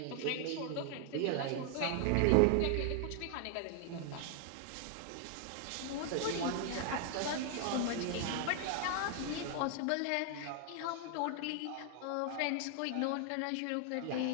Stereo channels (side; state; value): both; different; correlation 0.00